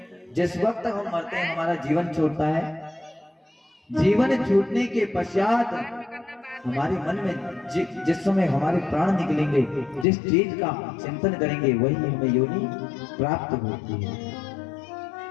जिस वक्त हम मरते हैं हमारा जीवन छूटता है। जीवन छूटने के पश्चात हमारे मन में जिस समय हमारे प्राण निकलेंगे, जिस चीज का चिंतन करेंगे वही हमें योनि प्राप्त होती है।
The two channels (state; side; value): drops out; right; at 10.1 s